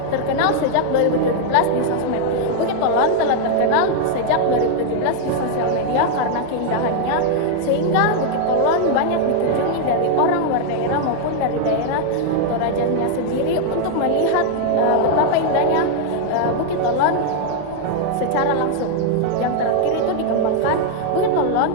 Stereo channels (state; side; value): different; both; correlation 0.00